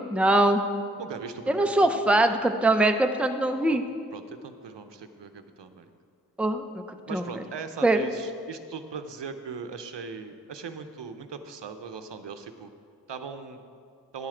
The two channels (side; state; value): both; normal; correlation 0.72